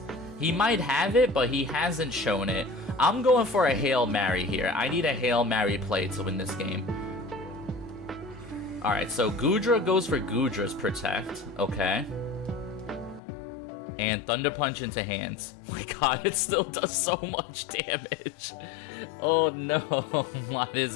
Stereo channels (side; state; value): right; drops out; at 13.2 s